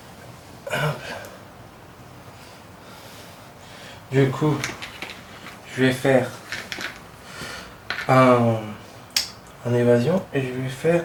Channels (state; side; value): identical; both; correlation 1.00